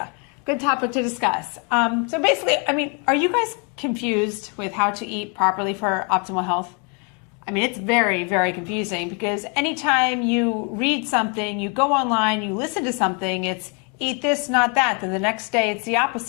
Good topic to discuss. So basically, are you guys confused with how to eat properly for optimal health? It's very, very confusing because anytime you read something, you go online, you listen to something, it's eat this, not that. Then the next day it's the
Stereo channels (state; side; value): quieter; right; 35.8 dB